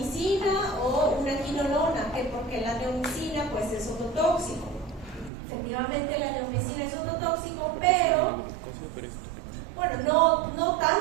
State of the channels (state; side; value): drops out; left; at 5.3 s